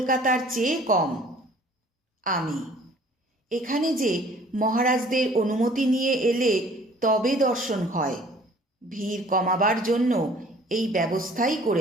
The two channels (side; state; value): both; normal; correlation 0.53